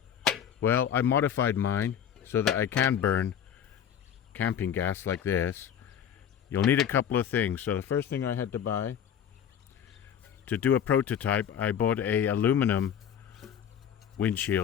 Well, I modified mine so that I can burn camping gas like this. You'll need a couple of things. So the first thing I had to buy to do a prototype, I bought a aluminum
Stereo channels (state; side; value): quieter; right; 9.0 dB